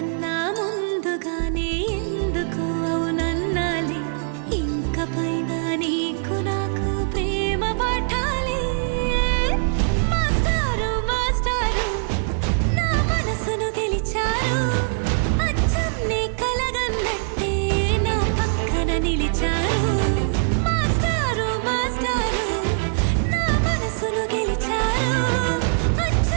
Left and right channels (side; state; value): left; silent; 56 dB below the other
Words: ముందుగానే ఎందుకు అవునన్నాలే. ఇంక పైన నీకు నాకు ప్రేమ పాఠాలే. మాస్టారు మాస్టారు నా మనసును గెలిచారు, అచ్చం నీ కలగన్నట్టే నా పక్కన నిలిచారు. మాస్టారు మాస్టారు నా మనసును గెలిచారు,